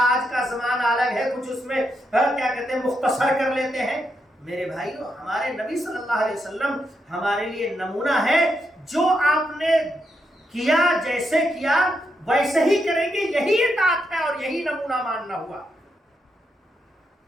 آج کا زمانہ الگ ہے، کچھ اس میں کیا کہتے ہیں مختصر کر لیتے ہیں۔ میرے بھائیو، ہمارے نبی صلی اللہ علیہ وسلم ہمارے لیے نمونہ ہے۔ جو آپ نے کیا، جیسے کیا ویسے ہی کریں گے، یہی اطاعت ہے اور یہی نمونہ ماننا ہوا۔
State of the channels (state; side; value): normal; both; correlation 0.82